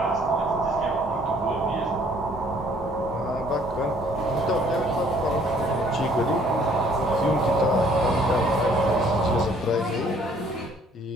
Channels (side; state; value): both; normal; correlation 0.60